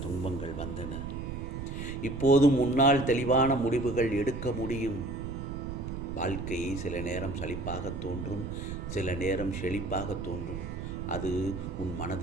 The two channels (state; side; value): noise; right; rumble, 7 dB below the sound